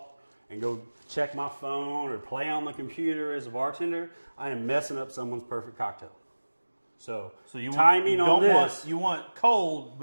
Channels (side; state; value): both; inverted; correlation -1.00